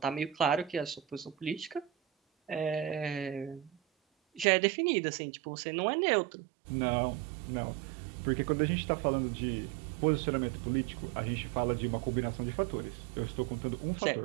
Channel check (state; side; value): drops out; left; at 4.5 s